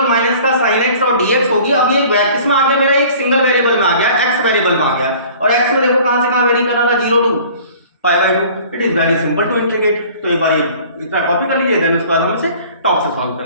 माइनस का sin x और dx होगी। अब ये किसमें आ गया, मेरा एक सिंगल वेरिएबल में आ गया, x वेरिएबल में आ गया, और x में देखो कहां से कहां वेरी कर रहा था, 0 to pi by 2। It is very simple to integrate. तो एक बार ये इतना कॉपी कर लीजिए, देन उसके बाद हम इसे टॉप से सॉल्व कर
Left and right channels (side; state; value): both; inverted; correlation -0.48